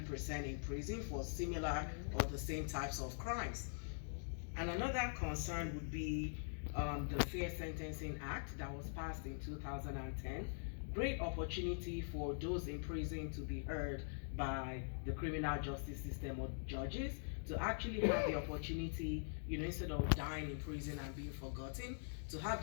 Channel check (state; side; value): silent; right; digital silence